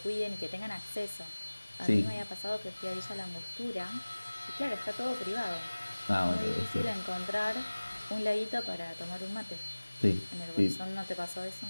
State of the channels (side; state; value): both; inverted; correlation -1.00